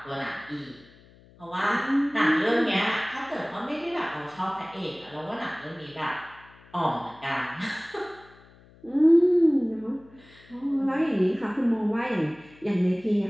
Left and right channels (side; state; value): left; noise; hum, 26 dB below the sound